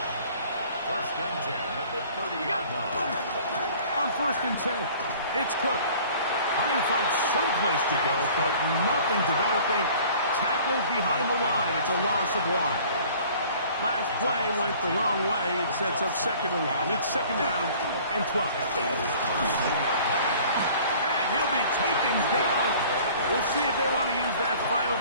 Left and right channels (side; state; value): both; inverted; correlation -0.50